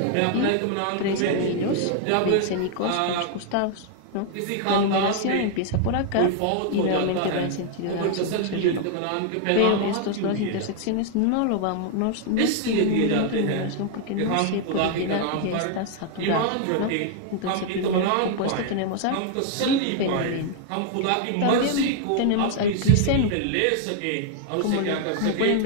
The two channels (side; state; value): both; different; correlation 0.00